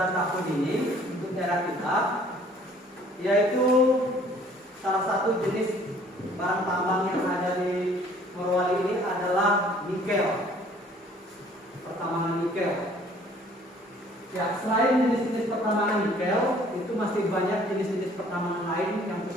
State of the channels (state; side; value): normal; both; correlation 0.56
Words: tahun ini untuk daerah kita, yaitu salah satu jenis bahan tambang yang ada di Morowali ini adalah nikel, pertambangan nikel. Ya, selain jenis-jenis pertambangan nikel, itu masih banyak jenis-jenis pertambangan lain yang